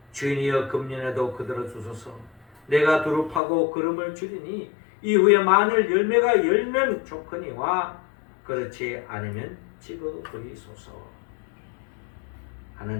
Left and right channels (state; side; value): drops out; right; at 3.4 s